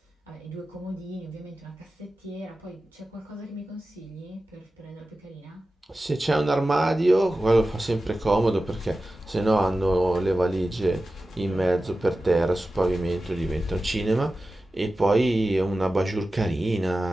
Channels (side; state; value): both; normal; correlation 0.94